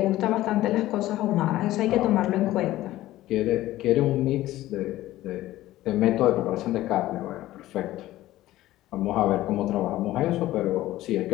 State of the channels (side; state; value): right; quieter; 15.6 dB